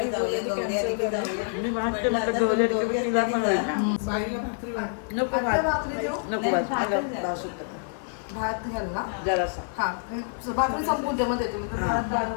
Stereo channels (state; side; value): silent; right; 56 dB below the other